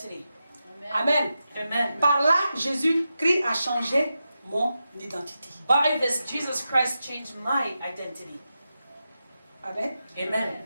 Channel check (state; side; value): inverted; both; correlation -0.90